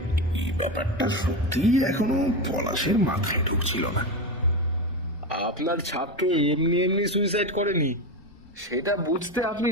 এই ব্যাপারটা সত্যিই এখনো পলাশের মাথায় ঢুকছিল না। আপনার ছাত্র এমনি এমনি সুইসাইড করেনি, সেটা বুঝতে আপনি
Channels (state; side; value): normal; both; correlation 0.17